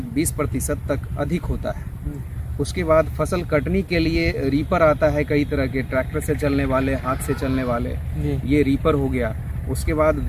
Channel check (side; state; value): both; identical; correlation 1.00